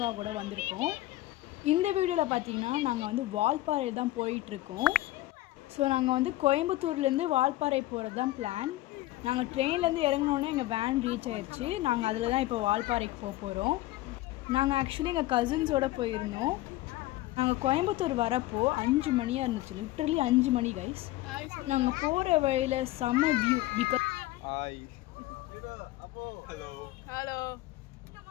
வந்திருக்கோம். இந்த வீடியோவில் பார்த்தீங்கன்னா நாங்கள் வந்து வால்பாறை தான் போயிட்டுருக்கோம். ஸோ நாங்கள் வந்து கோயம்புத்தூர்லேருந்து வால்பாறை போகிறது தான் பிளான். நாங்கள் ட்ரெயின்லேருந்து இறங்கினோன்னே எங்கள் வேன் ரீச் ஆயிடுச்சு. நாங்கள் அதில் தான் இப்போ வால்பாறைக்கு போக போகிறோம். நாங்கள் ஆக்சுவலி எங்கள் கசின்ஸோடு போயிருந்தோம். நாங்கள் கோயம்புத்தூர் வரப்போ 5 மணியாக இருந்துச்சு. லிட்ரலி 5 மணி கைஸ். நாங்கள் போகிற வழியில் செம்ம வியூ. பிகாஸ்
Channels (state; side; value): quieter; right; 17.2 dB